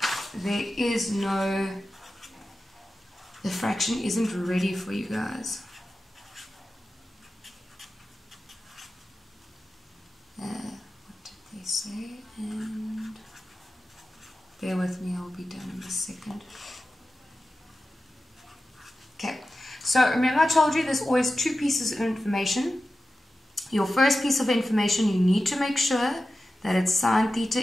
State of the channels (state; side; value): normal; both; correlation 0.93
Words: there is no, the fraction isn't ready for you guys. What did they say? And bear with me, I'll be done in a second. Okay, so remember I told you there's always 2 pieces of information. Your first piece of information, you need to make sure that it's sine theta